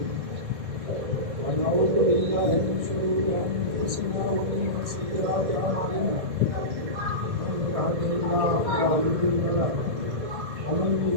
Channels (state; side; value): late; left; 1.6 ms